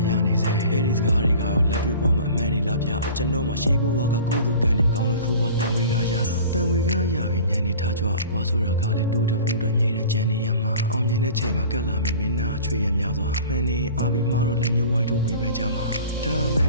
ရနေစေအဲ့ဒီစကားတွေကလက်တွေ့ပေါ်မှာအမှန်နေလားဗျကျွန်တော်မှရှေးဘဝကကုသိုလ်ကံနေကောင်းလို့ခိုးပေါ်တန်ဝေကရတန်ဝေကရပြီးညံနေထားကြွားဘွားဆိုတာကလည်းတိုးတဖို့တော့အမြဲတမ်းကြံနေရမှာအောင်မြင်တဲ့ချိန်မှာကက်လာမယ်မင်းသားအချွေရများစွာမှန်နေအာပြီးမားတော့လက်ညှိုးဝိုင်းထုတ်ဝေဖန်ကြမှာဒါမှန်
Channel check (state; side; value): inverted; both; correlation -0.42